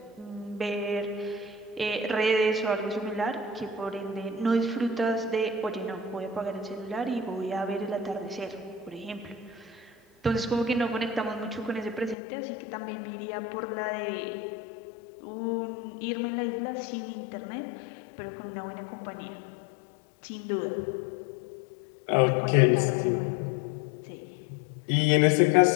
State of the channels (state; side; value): drops out; right; at 12.2 s